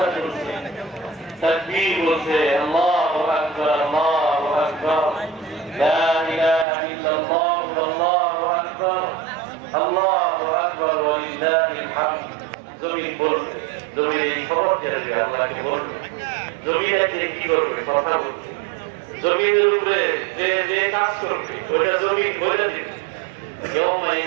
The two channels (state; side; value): drops out; left; at 6.7 s